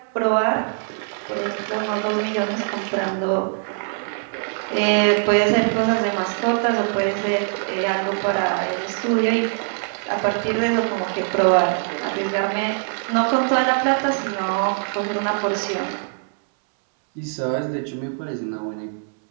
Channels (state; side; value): silent; left; 63 dB below the other